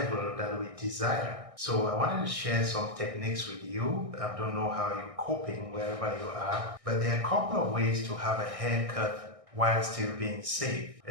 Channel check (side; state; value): left; late; 1.6 ms